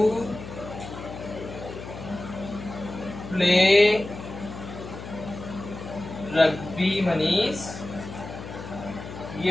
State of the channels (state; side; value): noise; left; hum, 11 dB below the sound